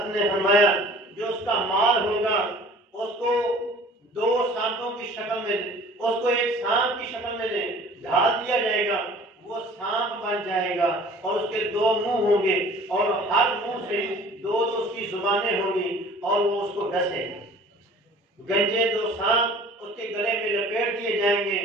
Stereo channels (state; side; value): normal; both; correlation 0.48